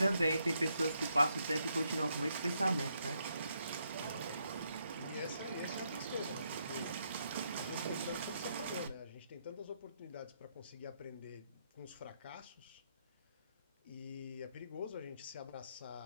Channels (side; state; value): both; inverted; correlation -0.77